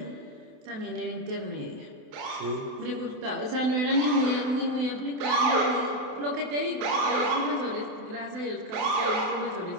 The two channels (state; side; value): late; left; 28 ms